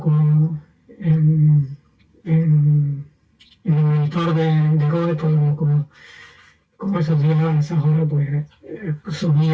en el monitor de Rode, pues como esos días, a esas horas, pues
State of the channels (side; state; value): both; identical; correlation 1.00